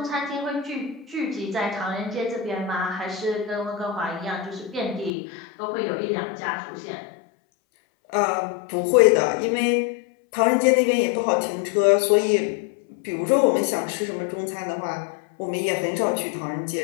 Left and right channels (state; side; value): drops out; right; at 5.1 s